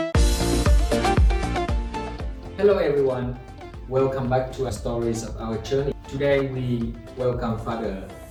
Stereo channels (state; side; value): identical; both; correlation 1.00